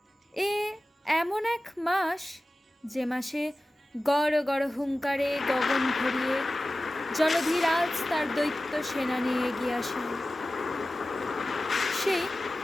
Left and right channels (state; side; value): normal; both; correlation 0.96